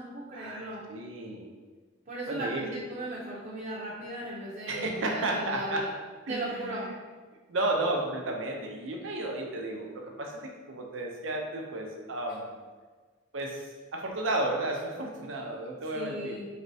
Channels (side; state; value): both; normal; correlation 0.00